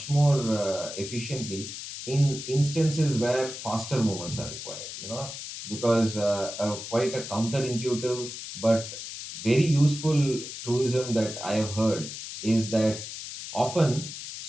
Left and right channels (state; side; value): noise; left; hiss, 9 dB below the sound